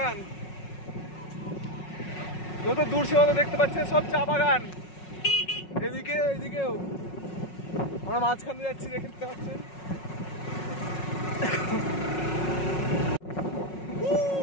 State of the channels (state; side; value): late; right; 5.4 ms